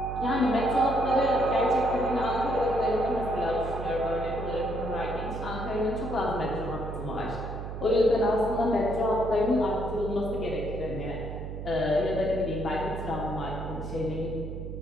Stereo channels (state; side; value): noise; right; hum, 7 dB below the sound